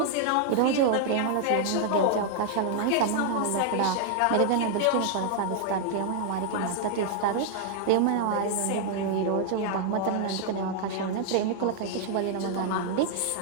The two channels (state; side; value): different; both; correlation 0.00